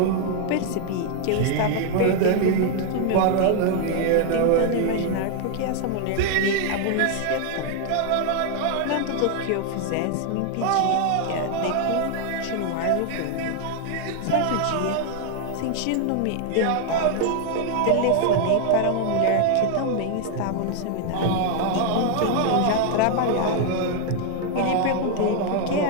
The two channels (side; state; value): both; different; correlation 0.00